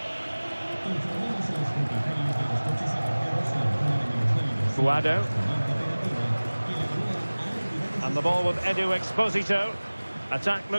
Guado. And the ball with Edu Exposito. Attack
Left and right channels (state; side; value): inverted; both; correlation -1.00